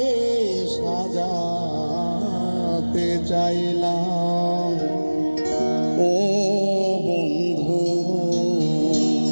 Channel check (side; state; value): both; inverted; correlation -1.00